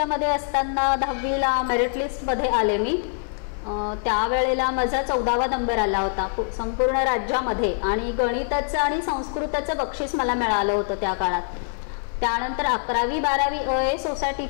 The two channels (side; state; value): right; silent; digital silence